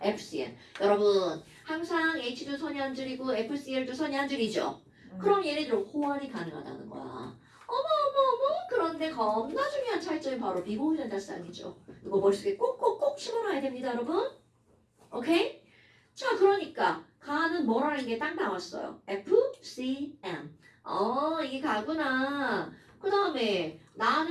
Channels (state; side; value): identical; both; correlation 1.00